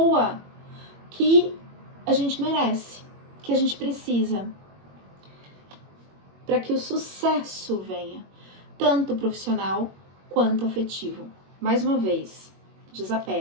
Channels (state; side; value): late; left; 21 ms